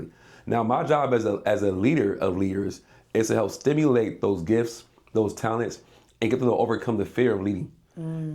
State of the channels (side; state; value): both; identical; correlation 1.00